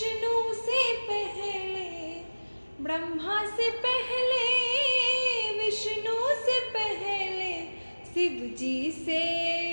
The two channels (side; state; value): both; inverted; correlation -1.00